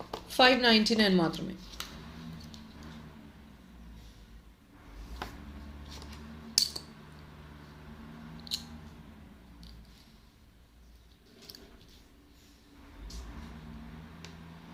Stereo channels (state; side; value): identical; both; correlation 1.00